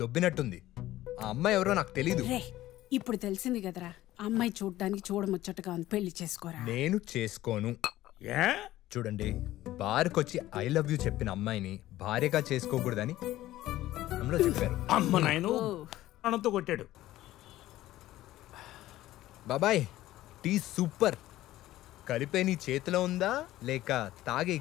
దొబ్బినట్టుంది. ఆ అమ్మాయి ఎవరో నాకు తెలీదు. ఇప్పుడు తెలిసింది కదరా, అమ్మాయి చూడడానికి చూడముచ్చటగా ఉంది, పెళ్లి చేసుకోరా. నేను చేసుకోను. చూడండి, బార్కొచ్చి ఐ లవ్ యూ చెప్పిన అమ్మాయిని భార్యగా చేసుకోకూడదని అమ్మలో చెప్పారు. అమ్మ నాయను అనంతో కొట్టాడు. బాబాయ్, టీ సూపర్. కలిపే నీ చేతిలో ఉందా లేక తాగే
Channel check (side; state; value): right; quieter; 15.2 dB